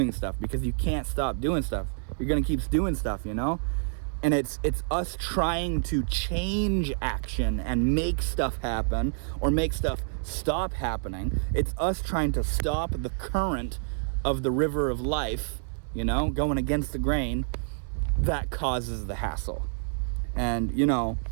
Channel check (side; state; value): left; silent; digital silence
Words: stuff, because you can't stop doing stuff. You're gonna keep doing stuff, you know? And it's us trying to change action and make stuff happen or make stuff stop happening. It's us trying to stop the current of the river of life, you know, going against the grain, that causes the hassle. And, you know,